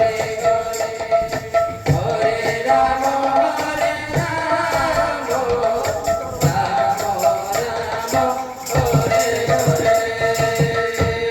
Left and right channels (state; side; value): identical; both; correlation 1.00